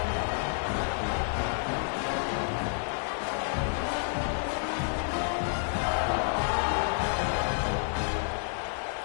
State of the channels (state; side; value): silent; right; 58 dB below the other